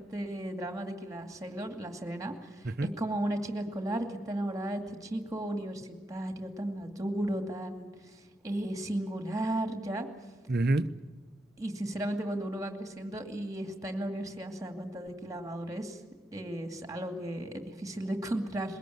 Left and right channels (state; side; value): normal; both; correlation 0.84